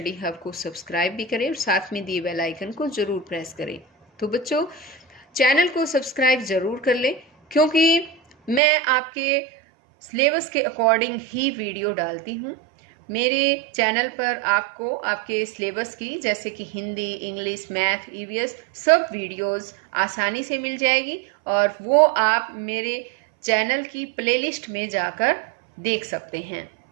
हब को सब्सक्राइब भी करें और साथ में दिए बेल आइकन को ज़रूर प्रेस करें। तो बच्चों, चैनल को सब्सक्राइब ज़रूर कर लें, क्योंकि मैं आपके सिलेबस के अकॉर्डिंग ही वीडियो डालती हूँ। मेरे चैनल पर आपको आपके सिलेबस की, जैसे कि हिंदी, इंग्लिश, मैथ, ईवीएस, सब वीडियोस आसानी से मिल जाएगी और वो आप मेरे चैनल की प्लेलिस्ट में जाकर देख सकते हैं।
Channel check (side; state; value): left; drops out; at 8.6 s